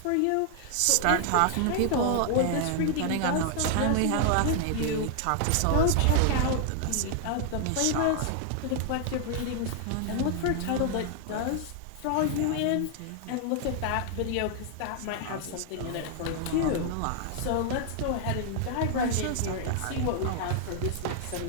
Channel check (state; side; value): different; both; correlation 0.00